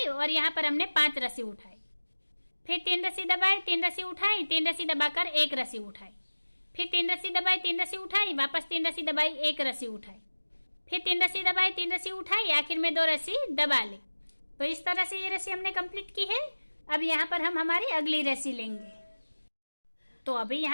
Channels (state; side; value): inverted; both; correlation -1.00